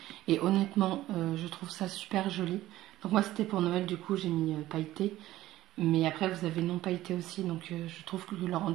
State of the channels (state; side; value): quieter; left; 15.2 dB